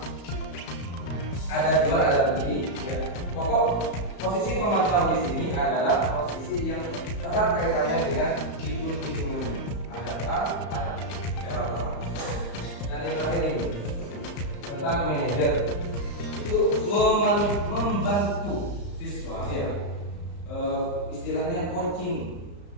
Ada jual ada beli. Ya. Pokok posisi pemantau di sini adalah posisi yang erat kaitannya dengan hitung-hitungan. Ada A, ada cara otomatis. Dan yang terakhir ini tentang manajer itu membantu siswa, ya. Istilahnya coaching.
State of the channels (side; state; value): right; late; 35 ms